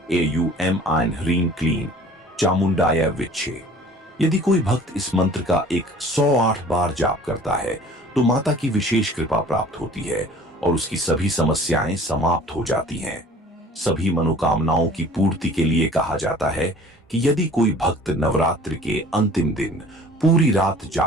AUM आइन ह्रीं क्लीं चामुंडाय विच्छे। यदि कोई भक्त इस मंत्र का 108 बार जाप करता है तो माता की विशेष कृपा प्राप्त होती है और उसकी सभी समस्याएं समाप्त हो जाती हैं। सभी मनोकामनाओं की पूर्ति के लिए कहा जाता है कि यदि कोई भक्त नवरात्रि के अंतिम दिन पूरी रात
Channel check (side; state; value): both; normal; correlation 0.48